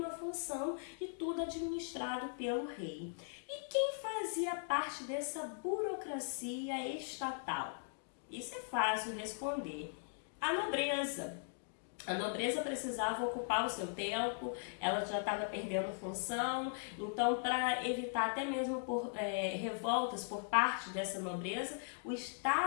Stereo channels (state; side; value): silent; right; digital silence